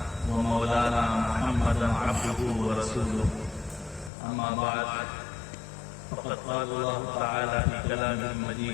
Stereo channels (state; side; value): drops out; right; at 4.1 s